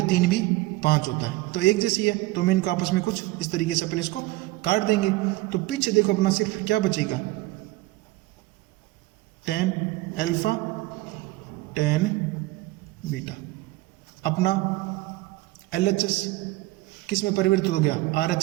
3 भी 5 होता है, तो एक जैसी है। तो मैं इनको आपस में कुछ इस तरीके से अपन इसको काट देंगे। तो पीछे देखो अपना सिर्फ क्या बचेगा 10 अल्फा 10 बीटा। अपना LHS किस में परिवर्तित हो गया,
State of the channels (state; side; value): quieter; left; 19.6 dB